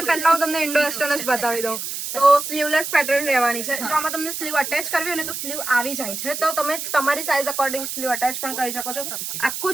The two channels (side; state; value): right; noise; hiss, 5 dB below the sound